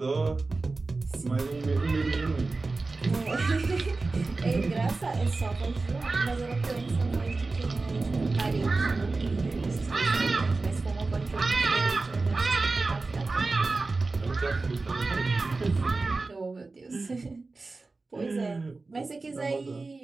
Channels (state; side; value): quieter; left; 3.6 dB